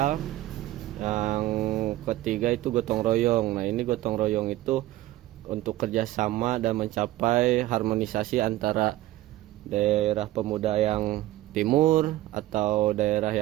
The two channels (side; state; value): left; quieter; 15.8 dB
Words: Yang ketiga itu gotong royong. Nah, ini gotong royong itu untuk kerjasama dan mencapai harmonisasi antara daerah pemuda yang timur atau daerah